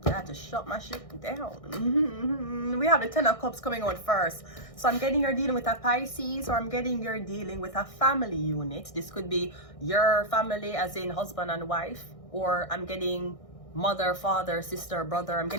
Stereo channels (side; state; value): right; late; 1.6 ms